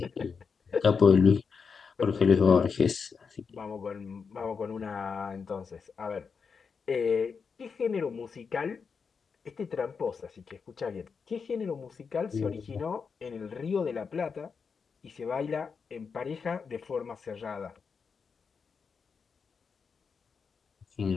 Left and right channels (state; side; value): quieter; right; 5.7 dB